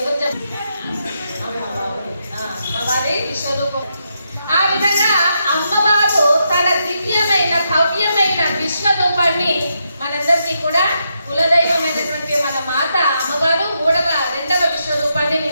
అమ్మవారి విశ్వరూపం. ఆ విధంగా అమ్మవారు తన దివ్యమైన భవ్యమైన విశ్వరూపాన్ని మనందరికీ కూడా కులదైవమైనటువంటి మన మాత అమ్మవారు రెండవ విశ్వరూపాన్ని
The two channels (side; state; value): both; inverted; correlation -0.82